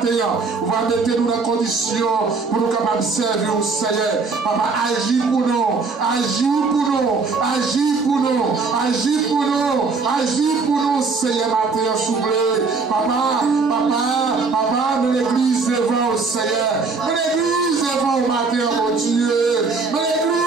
Vous allez mettre nous dans condition pour nous capables de servir au Seigneur. Papa, agis pour nous. Agis pour nous. Agis pour nous. Agis pour nous. Agis pour nous, Seigneur, matin, soufflez. Papa, de l'église devant au Seigneur. De l'église devant au matin, mon Dieu. De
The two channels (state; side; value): quieter; left; 4.4 dB